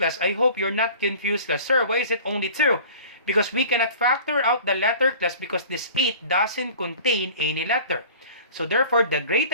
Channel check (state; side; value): inverted; both; correlation -0.43